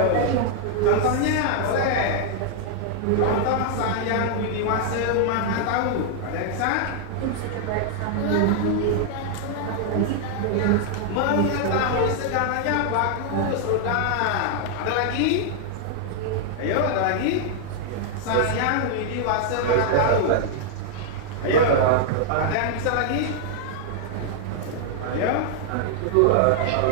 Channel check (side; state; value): both; different; correlation -0.01